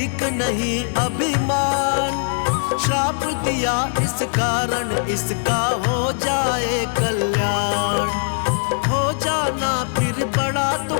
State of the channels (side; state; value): right; silent; 65 dB below the other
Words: नहीं अभिमान, श्राप दिया इस कारण इसका हो जाए कल्याण। हो जाना फिर बड़ा तो